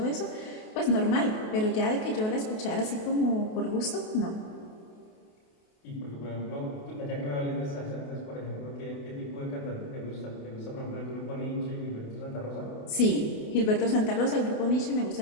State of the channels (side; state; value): right; late; 28 ms